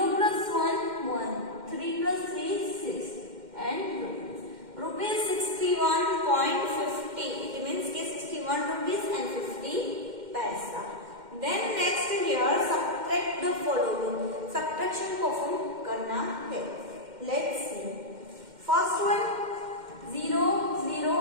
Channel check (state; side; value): late; left; 2.1 ms